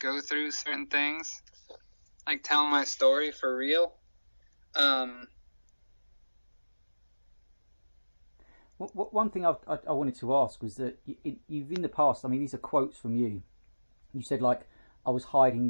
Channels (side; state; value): both; inverted; correlation -1.00